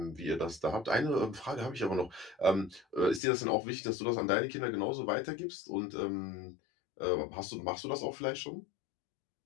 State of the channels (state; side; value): drops out; right; at 3.2 s